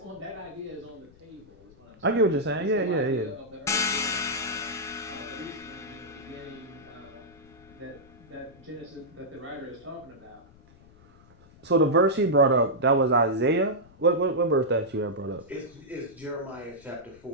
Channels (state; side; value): noise; left; rumble, 25 dB below the sound